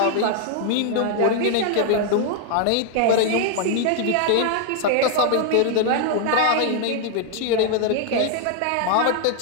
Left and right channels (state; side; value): different; both; correlation 0.00